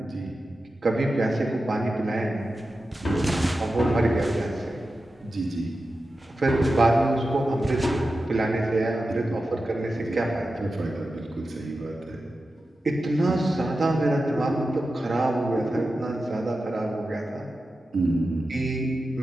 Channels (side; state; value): both; normal; correlation 0.92